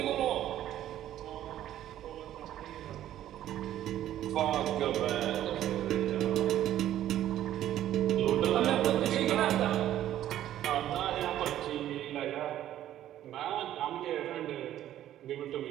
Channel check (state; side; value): quieter; left; 12.3 dB